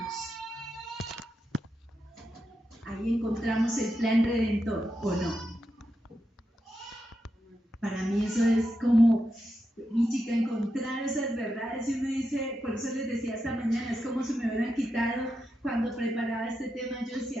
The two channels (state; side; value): normal; both; correlation 0.86